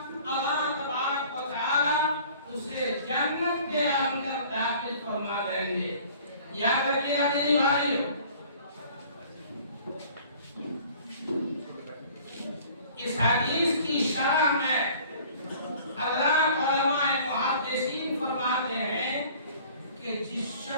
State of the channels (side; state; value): both; inverted; correlation -0.50